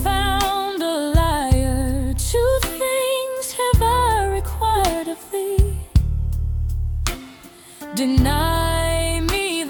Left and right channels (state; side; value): identical; both; correlation 1.00